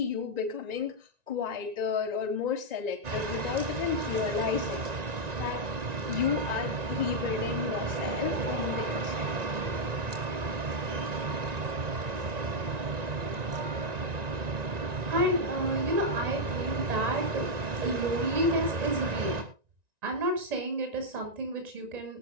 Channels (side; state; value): left; late; 1.9 ms